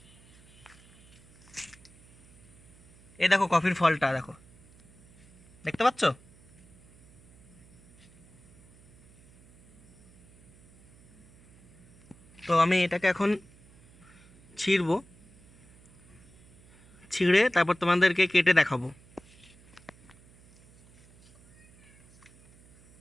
এই দেখো কফির ফলটা দেখো, দেখতে পাচ্ছ? তো আমি এটাকে এখন ছিঁড়বো, ছিঁড়ে তারপর তোমাদেরকে কেটে দেখাবো।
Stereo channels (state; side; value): noise; right; hum, 27 dB below the sound